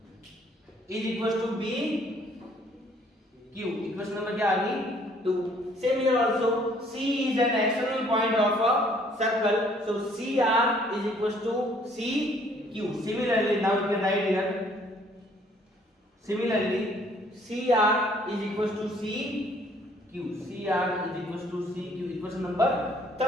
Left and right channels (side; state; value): both; normal; correlation 0.61